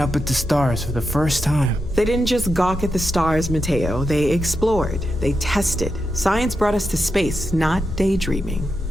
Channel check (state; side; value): normal; both; correlation 0.87